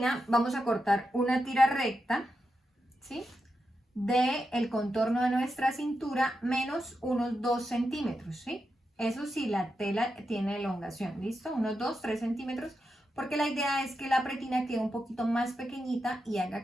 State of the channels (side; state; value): both; normal; correlation 0.87